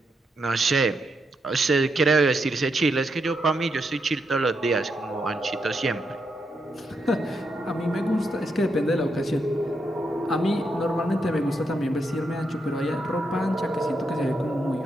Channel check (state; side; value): normal; both; correlation 0.81